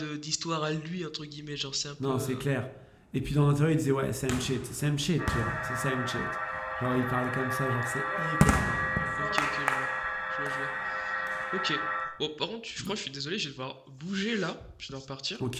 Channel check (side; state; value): both; identical; correlation 1.00